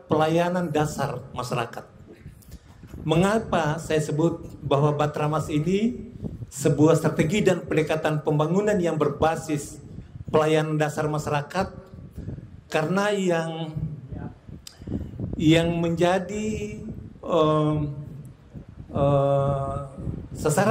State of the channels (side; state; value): both; identical; correlation 1.00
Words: pelayanan dasar masyarakat. Mengapa saya sebut bahwa Bahatramas ini sebuah strategi dan pendekatan pembangunan yang berbasis pelayanan dasar masyarakat? Karena yang menjadi